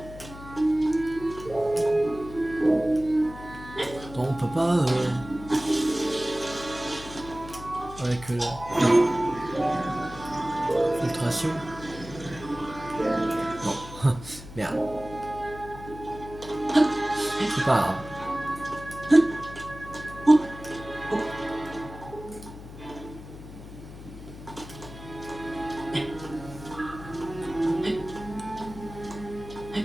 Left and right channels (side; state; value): left; noise; hum, 14 dB below the sound